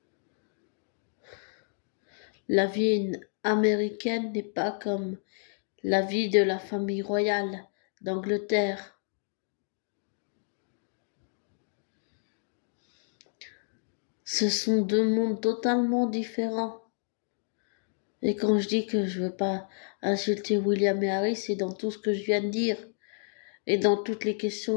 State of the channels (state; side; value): silent; right; digital silence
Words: La vie américaine n'est pas comme la vie de la famille royale d'Angleterre. Ce sont deux mondes totalement différents. Et quand je dis que je veux pas insulter William et Harry, c'est dans tout ce que je viens de dire. Et dans toutes les